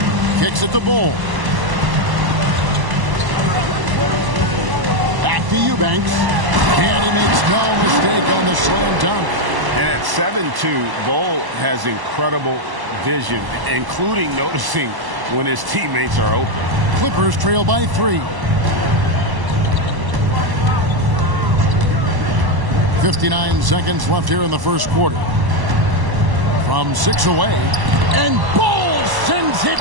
Kicks it to Bowl. Back to Eubanks. And he makes no mistake on the slam dunk. And at 7-2, Bowl has incredible vision, including noticing when his teammates are open. Clippers trail by 3. 59 seconds left here in the first quarter. From 6 away. And Bull sends it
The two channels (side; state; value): left; late; 1.0 ms